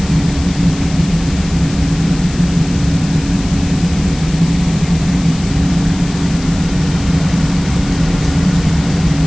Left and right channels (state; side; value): noise; left; hiss, 15 dB below the sound